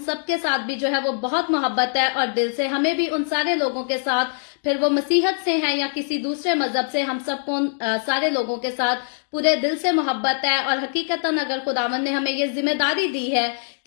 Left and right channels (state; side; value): silent; right; digital silence